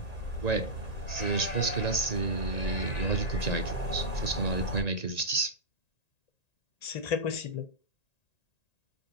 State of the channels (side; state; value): right; late; 1.9 ms